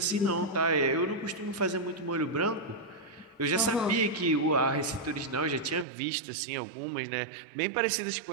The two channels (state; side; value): drops out; left; at 5.9 s